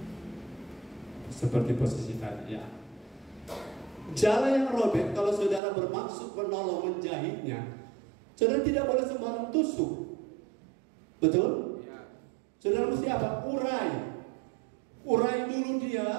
seperti posisi tadi ya. Jala yang robek, kalau saudara bermaksud menolong menjahitnya, saudara tidak boleh sembarang tusuk. Betul? Ya. Saudara mesti apa? Urai dulu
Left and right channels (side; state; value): left; drops out; at 5.6 s